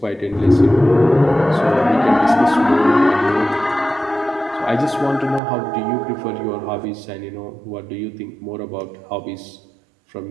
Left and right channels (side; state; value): left; drops out; at 5.4 s